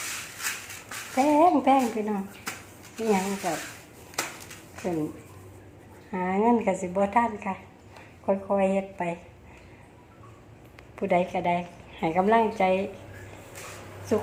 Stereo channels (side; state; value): both; identical; correlation 1.00